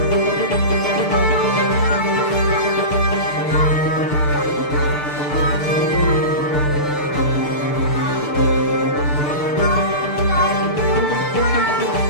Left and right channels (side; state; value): right; late; 6.8 ms